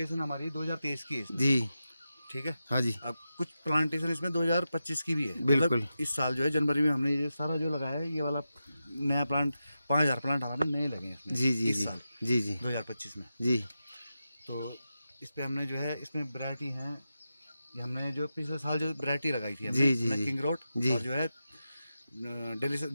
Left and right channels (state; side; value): inverted; both; correlation -0.90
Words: हमारी 2023 की है इसमें। जी ठीक है। हाँ जी। अब कुछ प्लांटेशन इसमें 2025 की भी है। बिल्कुल। मतलब इस साल जो है जनवरी में हमने ये सारा जो लगाया है, ये वाला नया प्लांट 5000 प्लांट हमारे नए लगे हैं इसमें। जी जी इस जी साल जी जी 2025 में। जी। तो इस पे हमने जो है इसमें वैरायटी है, ये हमने जो पिछले साल जो वैरायटी लगाई थी जी, जी, जी। किंग रोड जी। और जो है दिल्ली से